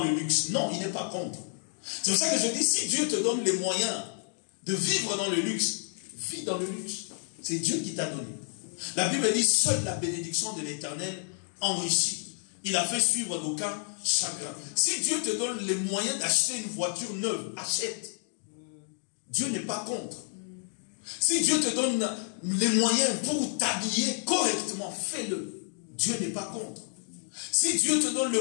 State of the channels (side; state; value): right; silent; 57 dB below the other